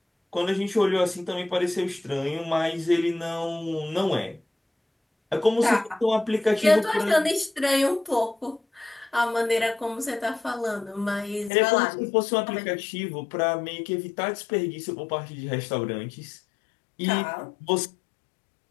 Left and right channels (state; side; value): drops out; right; at 11.5 s